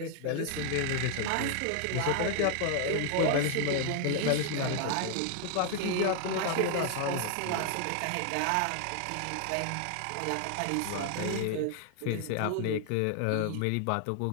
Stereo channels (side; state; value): both; different; correlation 0.00